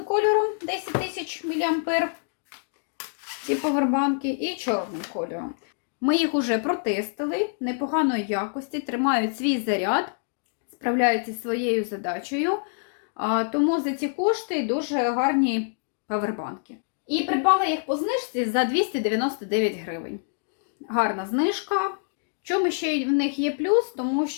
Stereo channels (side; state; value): right; silent; digital silence